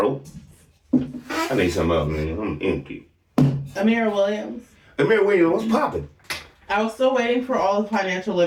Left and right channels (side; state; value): both; identical; correlation 1.00